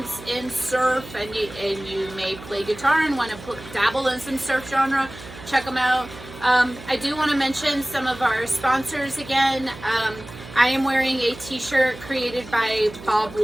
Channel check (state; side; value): noise; right; hum, 15 dB below the sound